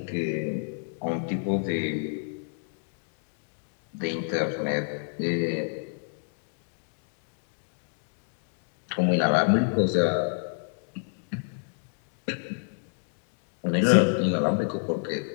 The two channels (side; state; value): right; silent; digital silence